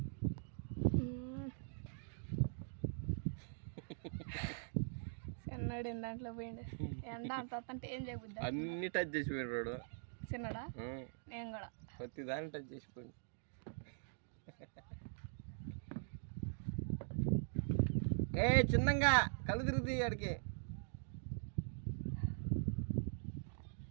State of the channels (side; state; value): left; silent; digital silence